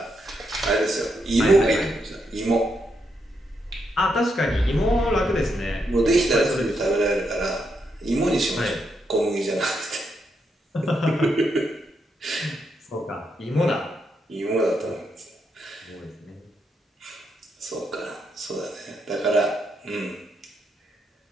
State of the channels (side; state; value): both; normal; correlation 0.80